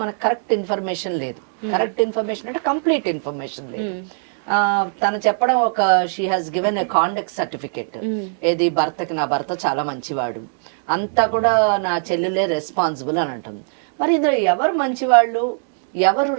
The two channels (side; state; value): left; silent; digital silence